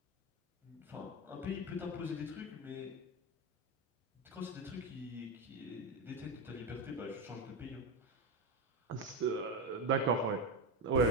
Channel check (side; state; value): both; normal; correlation 0.14